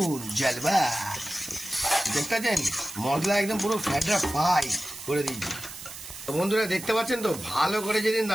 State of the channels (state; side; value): noise; right; hiss, 12 dB below the sound